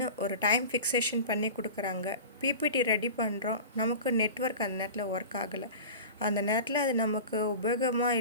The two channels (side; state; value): both; inverted; correlation -0.34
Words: ஒரு டைம் ஃபிக்ஸேஷன் பண்ணி கொடுக்குறாங்க. பிபிடி ரெடி பண்ணுறோம், நமக்கு நெட்ஒர்க் அந்த நேரத்தில் ஒர்க் ஆகலை. அந்த நேரத்தில் அது நமக்கு உபயோகமாக